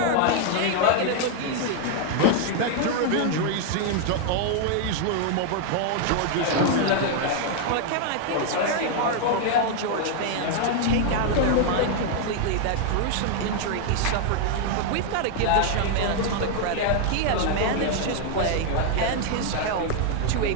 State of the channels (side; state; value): both; different; correlation 0.00